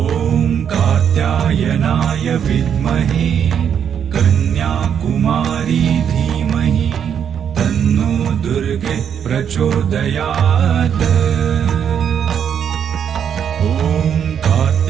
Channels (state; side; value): quieter; left; 8.3 dB